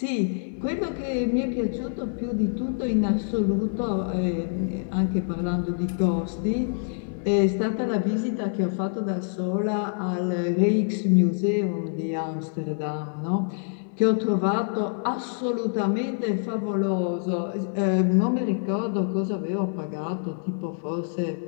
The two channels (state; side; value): silent; right; digital silence